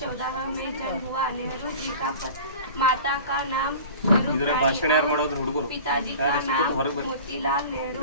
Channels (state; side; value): inverted; both; correlation -0.39